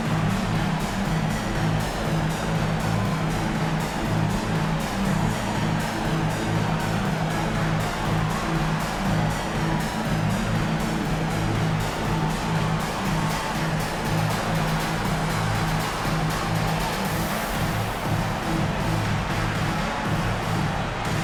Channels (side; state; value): both; identical; correlation 1.00